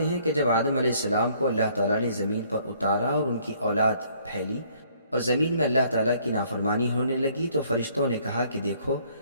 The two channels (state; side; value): inverted; both; correlation -0.63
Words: ہیں کہ جب آدم علیہ السلام کو اللہ تعالیٰ نے زمین پر اتارا اور ان کی اولاد پھیلی اور زمین میں اللہ تعالیٰ کی نافرمانی ہونے لگی تو فرشتوں نے کہا کہ دیکھو